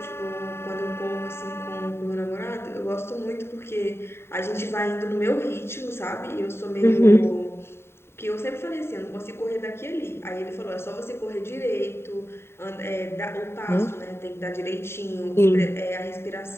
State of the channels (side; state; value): right; late; 0.12 ms